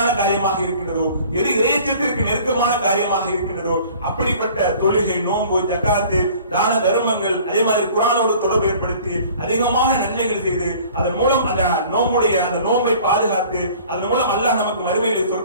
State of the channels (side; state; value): both; inverted; correlation -0.49